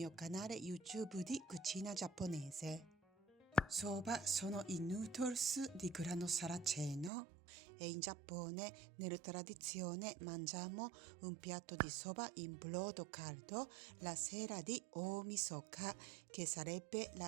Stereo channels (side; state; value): left; drops out; at 7.1 s